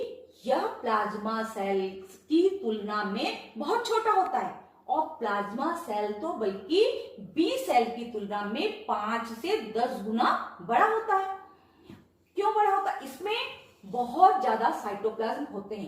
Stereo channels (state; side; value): identical; both; correlation 1.00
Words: यह प्लाज्मा सेल की तुलना में बहुत छोटा होता है, और प्लाज्मा सेल तो बल्कि बी सेल की तुलना में 5 से 10 गुना बड़ा होता है। क्यों बड़ा होता है, इसमें बहुत ज्यादा साइटोप्लाज्म होते